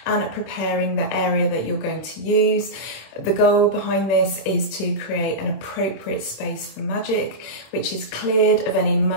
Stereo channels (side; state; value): right; late; 26 ms